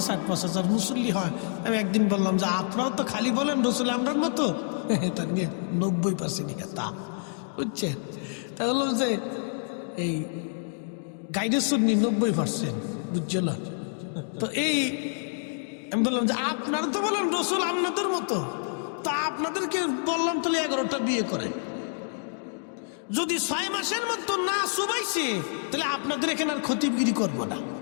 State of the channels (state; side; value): silent; right; digital silence